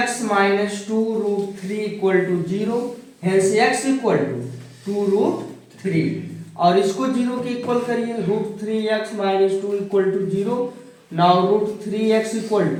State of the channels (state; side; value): identical; both; correlation 1.00